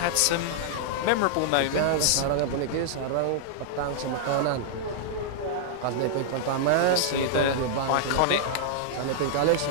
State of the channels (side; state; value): both; different; correlation -0.02